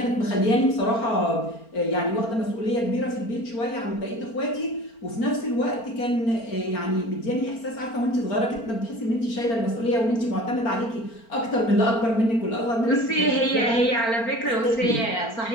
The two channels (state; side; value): late; right; 4.4 ms